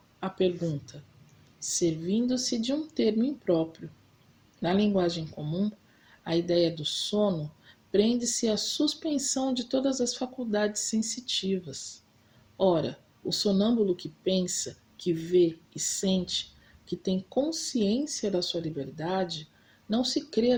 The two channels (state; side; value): identical; both; correlation 1.00